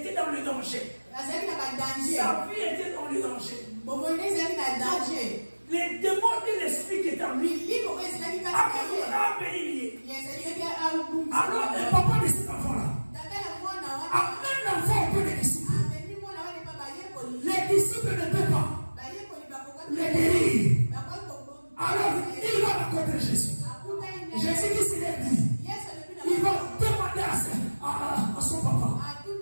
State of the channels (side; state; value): both; inverted; correlation -1.00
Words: dans le danger. Sa vie était dans le danger. Les démons et l'esprit qui est en lui a béni. Alors le papa de cet enfant-là amène l'enfant auprès des disciples. Les disciples ne peuvent pas le guérir. Alors il va rencontrer Jésus. Jésus qui se lève dit, il va demander à son papa